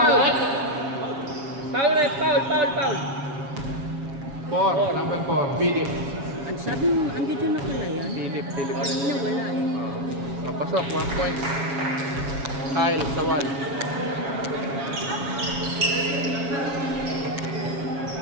Foul, ref. Foul. 4, number 4. Philip. Ang sabi mo, ang ganda na pala yan. Philip. Kanina wala eh. Kapasok, 1 point. Kyle, Sawal.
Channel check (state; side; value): late; left; 7.2 ms